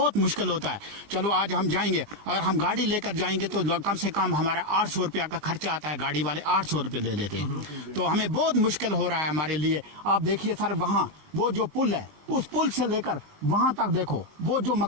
مشکل ہوتا ہے۔ چلو آج ہم جائیں گے، اگر ہم گاڑی لے کر جائیں گے تو کم سے کم ہمارا 800 روپیہ کا خرچہ آتا ہے، گاڑی والے 800 روپے لے لیتے ہیں، تو ہمیں بہت مشکل ہو رہا ہے ہمارے لیے۔ آپ دیکھیے سر، وہاں وہ جو پل ہے، اس پل سے لے کر وہاں تک دیکھو، وہ جو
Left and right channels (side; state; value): left; late; 20 ms